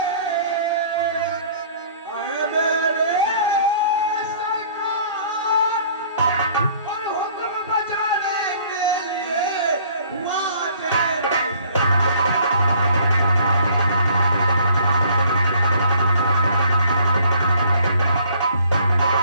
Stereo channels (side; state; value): both; inverted; correlation -0.56